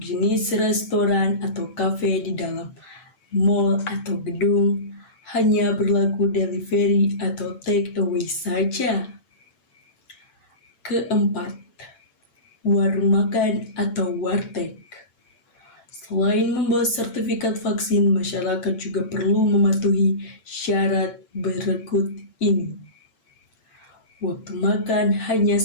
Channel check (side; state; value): right; late; 8.9 ms